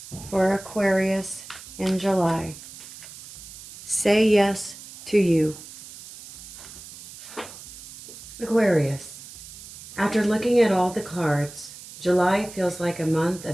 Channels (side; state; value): right; noise; hiss, 16 dB below the sound